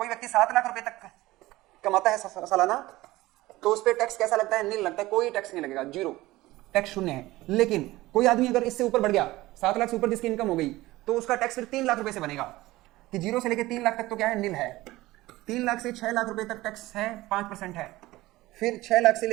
व्यक्ति 7 लाख रुपए तक कमाता है सालाना, तो उस पर टैक्स कैसा लगता है? नील लगता है, कोई टैक्स नहीं लगेगा, जीरो टैक्स, शून्य है। लेकिन कोई आदमी अगर इससे ऊपर बढ़ गया, 7 लाख से ऊपर जिसकी इनकम हो गई, तो उसका टैक्स फिर 3 लाख रुपए से बनेगा। कि 0 से लेकर 3 लाख तक तो क्या है? नील है। 3 लाख से 6 लाख रुपए तक टैक्स है, 5% है। फिर 6 लाख से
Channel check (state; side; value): quieter; left; 18.2 dB